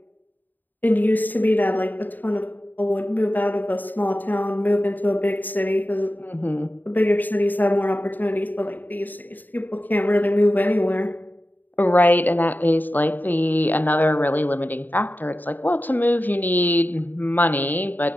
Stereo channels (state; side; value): late; right; 0.087 ms